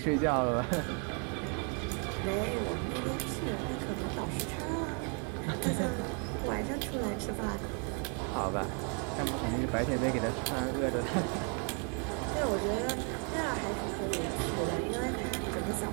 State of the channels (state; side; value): quieter; left; 39.4 dB